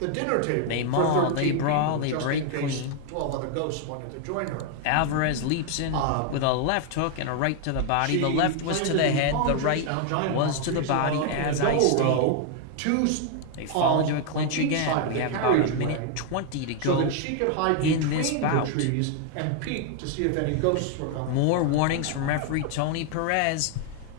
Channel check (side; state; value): both; different; correlation 0.00